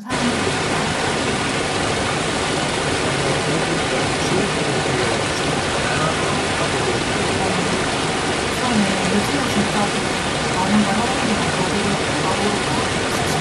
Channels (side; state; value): both; identical; correlation 1.00